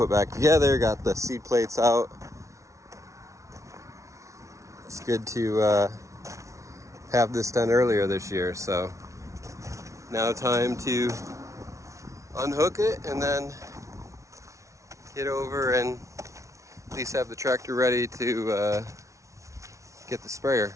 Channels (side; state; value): left; late; 0.15 ms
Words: back together, got the seed plates out. It's good to have this done earlier this year, so now time to unhook it and then get over and at least have the tractor ready to get the sprayer.